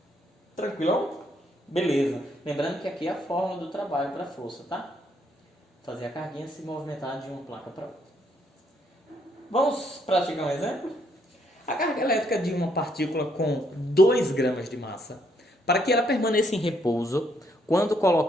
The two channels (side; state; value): both; normal; correlation 0.71